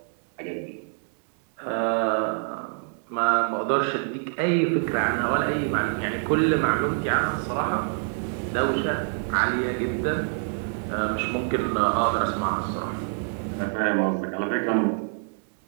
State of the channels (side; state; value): left; silent; 61 dB below the other